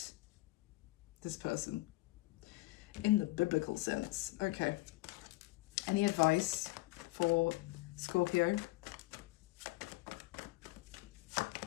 this person in the biblical sense. Okay, any advice for Scorpio?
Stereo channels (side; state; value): right; quieter; 20.5 dB